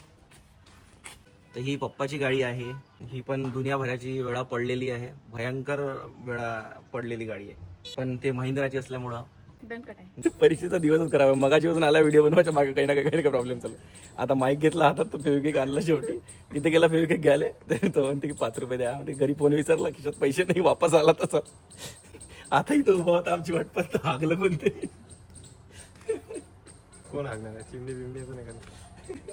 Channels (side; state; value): both; identical; correlation 1.00